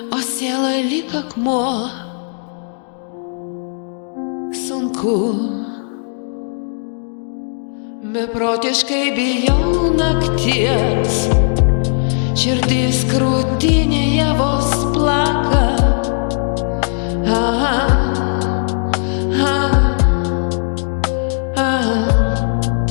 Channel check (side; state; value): right; silent; 61 dB below the other